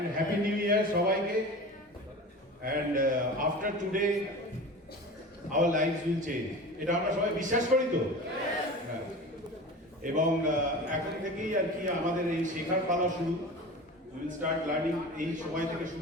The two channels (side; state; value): both; normal; correlation 0.34